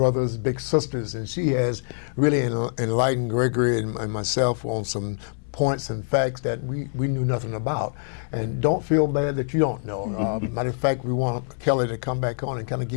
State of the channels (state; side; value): silent; right; 62 dB below the other